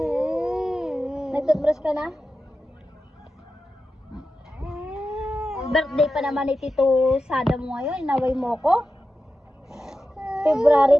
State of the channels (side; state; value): both; normal; correlation 0.92